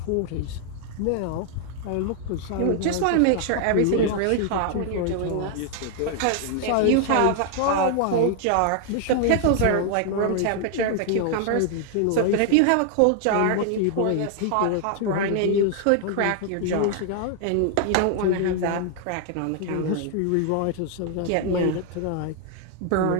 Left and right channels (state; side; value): different; both; correlation 0.00